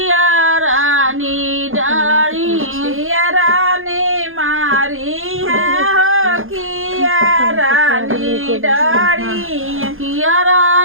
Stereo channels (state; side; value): late; left; 0.60 ms